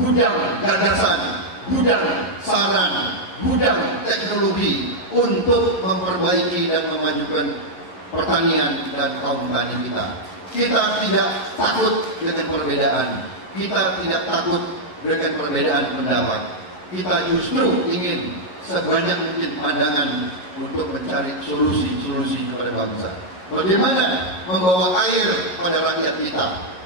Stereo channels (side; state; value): right; late; 11 ms